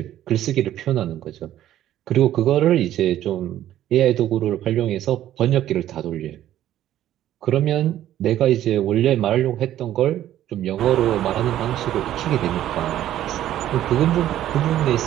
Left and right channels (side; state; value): left; quieter; 12.5 dB